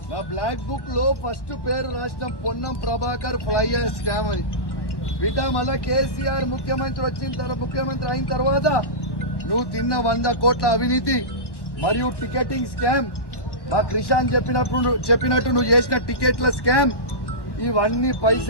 బ్లాక్ బుక్ లో ఫస్ట్ పేరు రాసిన Ponnam Prabhakar fly ash scam అని బిడ్డ. మళ్ళా కేసీఆర్ ముఖ్యమంత్రి అయిన తర్వాత నువ్వు తిన్న 100 కోట్ల అవినీతి మరియు టికెటింగ్ స్కామ్, మా క్రిషాన్ చెప్పినట్టు నువ్వు చేసిన టికెట్ల స్కామ్, ఇవన్నీ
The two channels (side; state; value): right; late; 1.0 ms